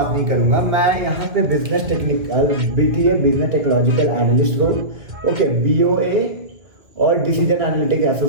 नहीं करूँगा, मैं यहाँ पे business technical BTA business technological analyst role, okay, BOA और डिसीजन एनालिटिक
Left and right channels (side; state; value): left; late; 2.0 ms